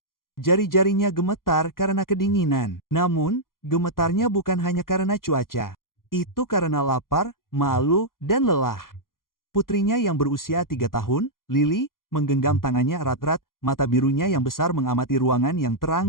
Jari-jarinya gemetar karena kedinginan. Namun, gemetarnya bukan hanya karena cuaca. Itu karena lapar, malu, dan lelah. Putrinya yang berusia 3 tahun, Lily, menggenggam tangannya erat-erat, mata birunya yang besar mengamati ruangan yang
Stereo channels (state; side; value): late; right; 0.91 ms